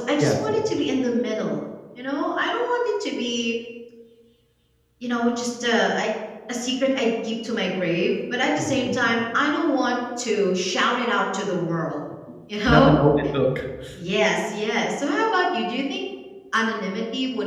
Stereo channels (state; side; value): identical; both; correlation 1.00